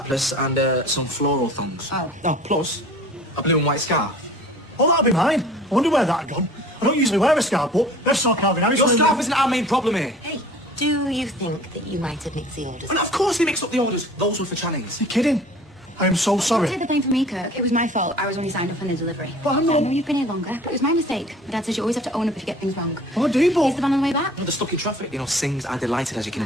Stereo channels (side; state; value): both; normal; correlation 0.46